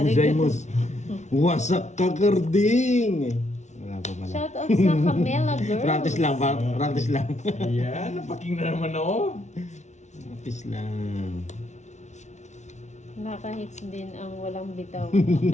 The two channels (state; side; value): late; right; 0.33 ms